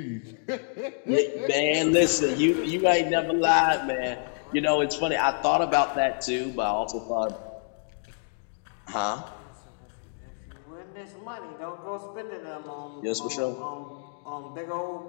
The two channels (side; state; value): right; silent; digital silence